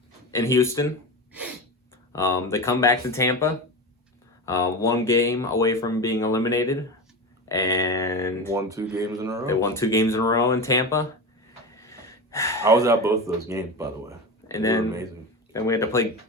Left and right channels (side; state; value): both; normal; correlation 0.24